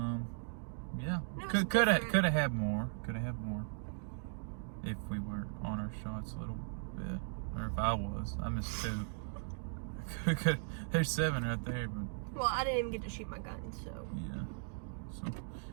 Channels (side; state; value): left; silent; digital silence